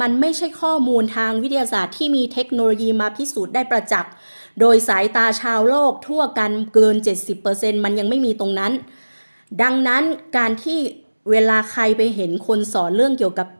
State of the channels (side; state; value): both; inverted; correlation -1.00